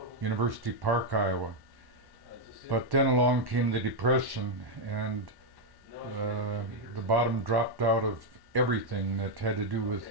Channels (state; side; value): late; left; 1.1 ms